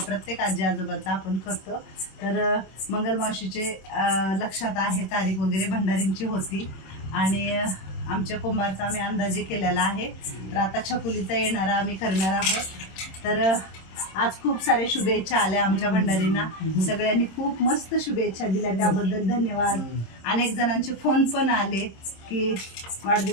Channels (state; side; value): late; right; 26 ms